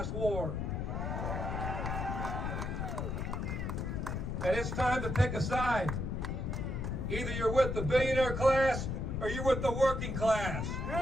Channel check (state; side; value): noise; left; rumble, 2 dB below the sound